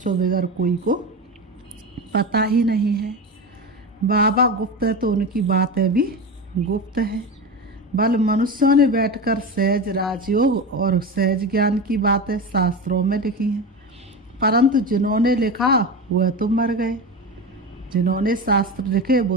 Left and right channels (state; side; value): normal; both; correlation 0.23